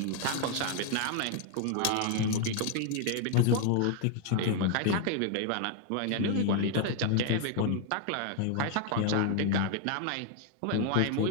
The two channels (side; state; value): both; different; correlation 0.00